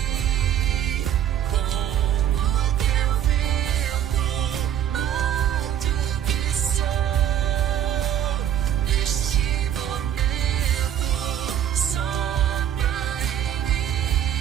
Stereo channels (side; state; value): left; quieter; 10.4 dB